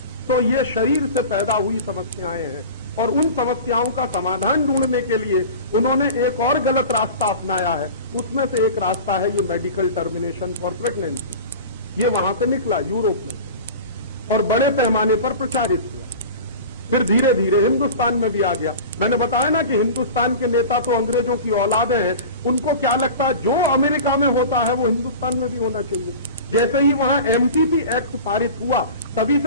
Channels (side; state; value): both; inverted; correlation -0.35